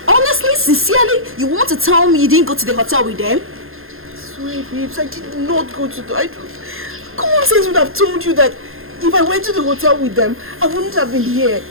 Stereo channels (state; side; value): late; left; 0.61 ms